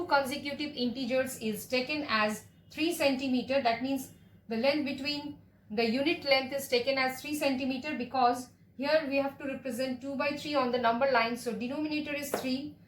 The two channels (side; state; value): both; identical; correlation 1.00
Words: consecutive integers is taken as 3 centimeter. That means the length between the unit length is taken as 3 centimeter, because here we have to represent 2 by 3 on the number line. So denominator is 3.